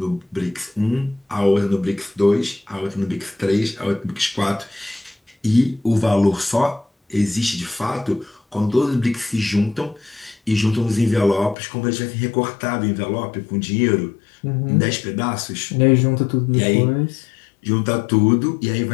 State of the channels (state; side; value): drops out; right; at 11.6 s